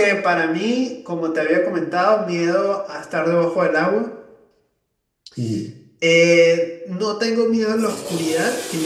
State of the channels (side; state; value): both; identical; correlation 1.00